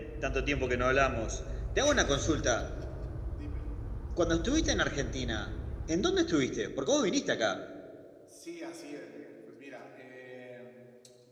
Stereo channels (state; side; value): identical; both; correlation 1.00